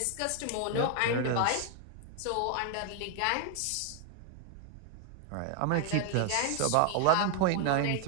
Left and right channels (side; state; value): both; different; correlation 0.01